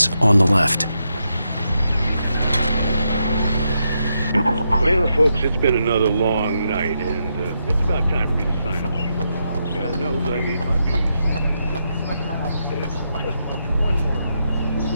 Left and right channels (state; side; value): inverted; both; correlation -0.82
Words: on the left. Well, folks, it's been another long night, and it's about time for me to sign off. God knows I need my peace. Just one more.